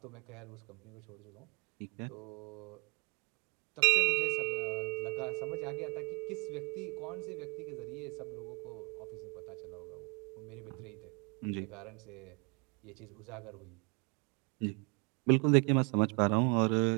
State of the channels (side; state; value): left; quieter; 32.6 dB